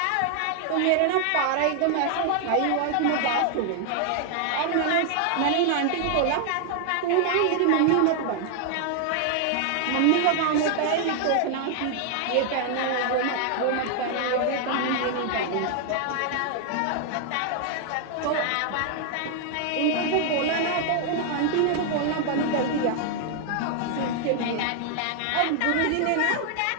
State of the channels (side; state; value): both; different; correlation 0.00